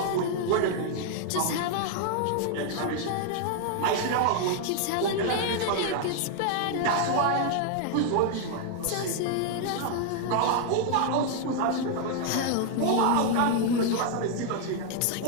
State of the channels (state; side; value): different; both; correlation 0.00